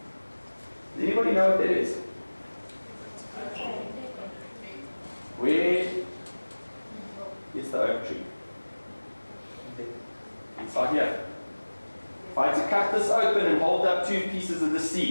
Does anybody know what that is? Where is the oak tree? Inside here. If I had to cut this open and hold up 2 pieces of the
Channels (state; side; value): inverted; both; correlation -1.00